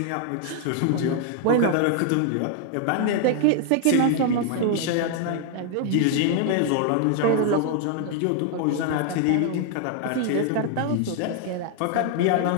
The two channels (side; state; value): both; different; correlation 0.00